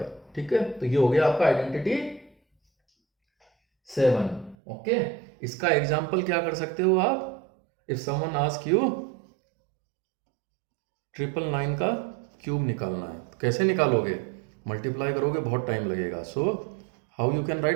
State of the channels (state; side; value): drops out; left; at 4.5 s